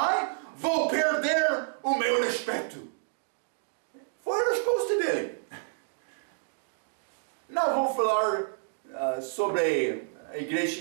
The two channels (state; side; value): silent; left; digital silence